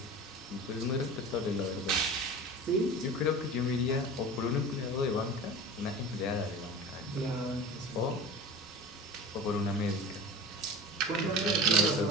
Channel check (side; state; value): both; normal; correlation 0.35